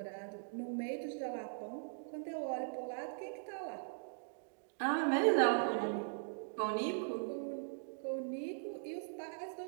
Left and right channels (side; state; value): left; silent; digital silence